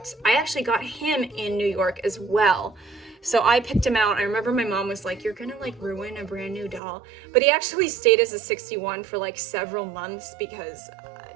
I actually got him in New York as well. So I picked him out. I remember my mom was like, you're gonna like ruin a brand new doll. But he actually stayed as a 61 for like several months because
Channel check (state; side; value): drops out; left; at 6.8 s